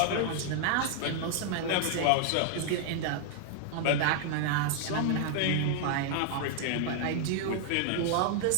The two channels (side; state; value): both; different; correlation 0.00